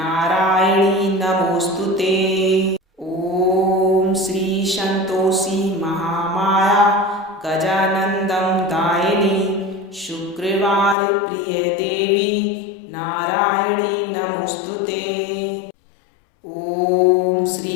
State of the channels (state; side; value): drops out; right; at 11.0 s